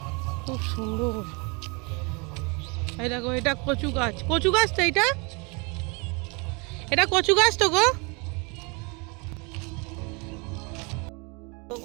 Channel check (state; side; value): quieter; left; 30.6 dB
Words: খুব সুন্দর। এই দেখো এটা কচু গাছ, কচু গাছ তো এটা, এটা কচু গাছ তো গো,